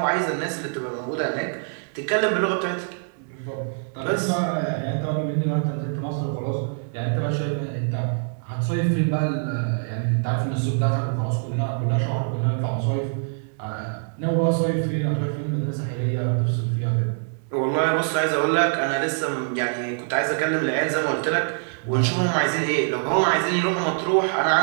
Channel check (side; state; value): left; silent; digital silence